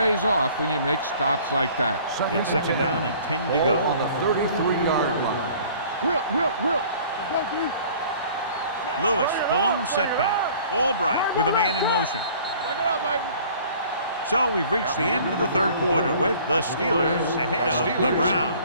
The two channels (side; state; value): both; inverted; correlation -0.51